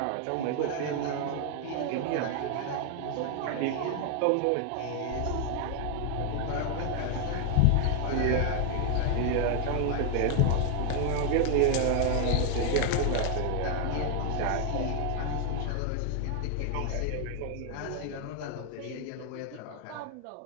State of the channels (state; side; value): different; both; correlation 0.00